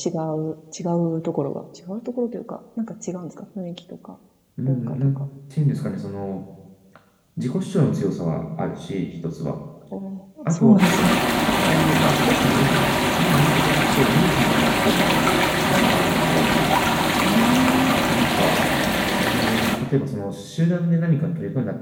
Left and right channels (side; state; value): both; identical; correlation 1.00